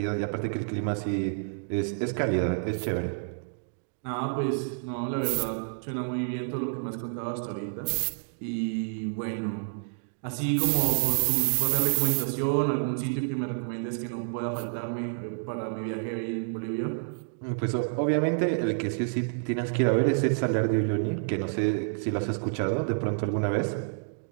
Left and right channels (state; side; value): silent; left; digital silence